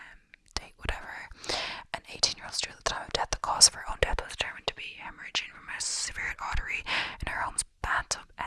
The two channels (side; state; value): both; identical; correlation 1.00